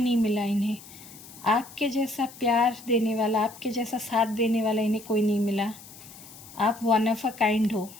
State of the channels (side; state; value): left; noise; hiss, 18 dB below the sound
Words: मिला इन्हें। आपके जैसा प्यार देने वाला, आपके जैसा साथ देने वाला इन्हें कोई नहीं मिला। आप वन ऑफ अ काइंड हो,